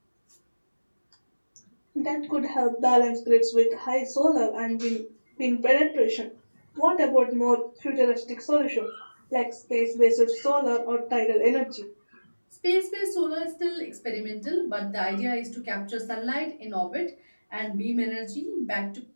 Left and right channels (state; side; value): inverted; both; correlation -1.00